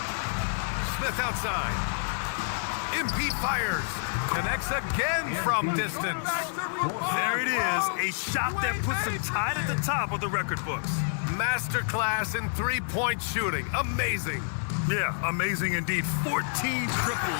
Smith outside. MP fires. Connects again from distance. There it is. A shot that puts him tied at the top of the record books. Masterclass in three-point shooting. Amazing. Yeah, amazing indeed. 14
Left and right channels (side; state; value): right; silent; 59 dB below the other